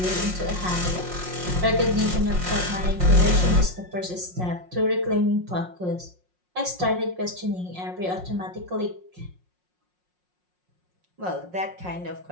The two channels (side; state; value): left; late; 5.5 ms